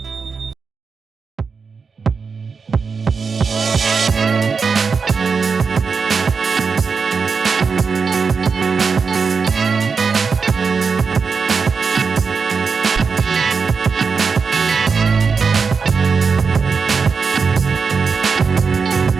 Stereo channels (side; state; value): left; quieter; 5.2 dB